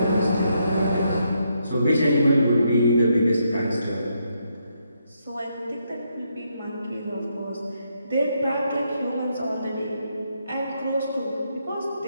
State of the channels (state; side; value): inverted; both; correlation -0.78